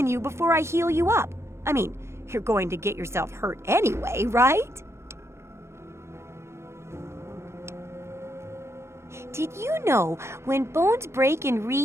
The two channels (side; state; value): left; late; 0.13 ms